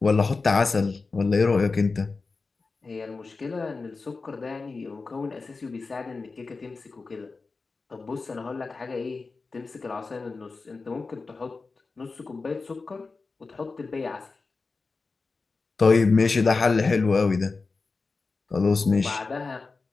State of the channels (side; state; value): right; quieter; 4.1 dB